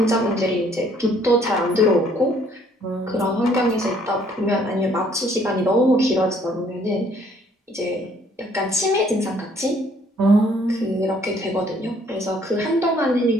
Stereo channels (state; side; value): normal; both; correlation 0.62